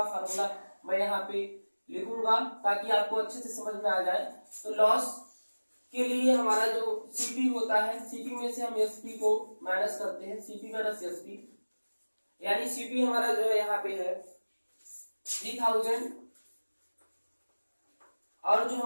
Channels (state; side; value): inverted; both; correlation -1.00